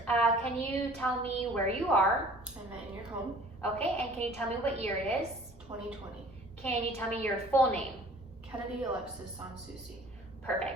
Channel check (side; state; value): both; normal; correlation 0.50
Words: can you tell me where you are? I'm in your home. Okay, and can you tell me what year it is? 2020. Can you tell me your full name? Kennedy Alexis Sansusi.